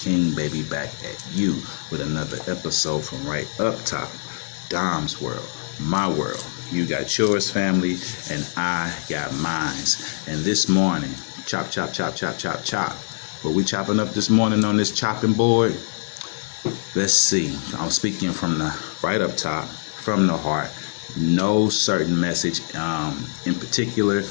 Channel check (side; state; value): right; silent; digital silence